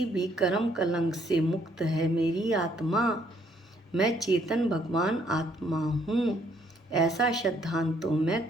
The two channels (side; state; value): both; normal; correlation 0.67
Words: भी कर्म कलंक से मुक्त है मेरी आत्मा। मैं चेतन भगवान आत्मा हूँ, ऐसा सिद्धांत तो मैं